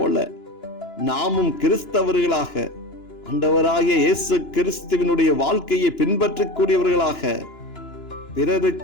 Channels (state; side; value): late; right; 2.9 ms